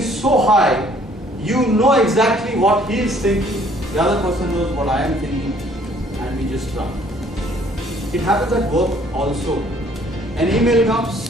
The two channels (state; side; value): normal; both; correlation 0.60